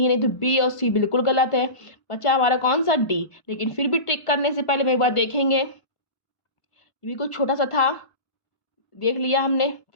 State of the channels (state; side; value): late; right; 1.5 ms